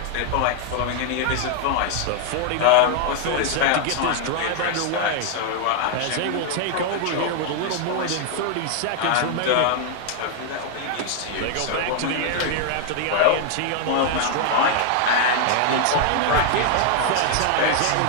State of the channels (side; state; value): both; different; correlation 0.00